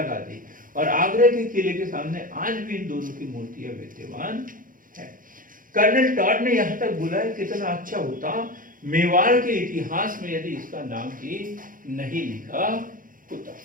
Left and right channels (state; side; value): late; left; 0.40 ms